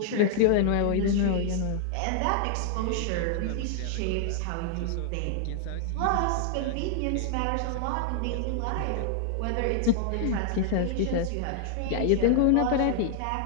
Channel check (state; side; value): different; both; correlation 0.00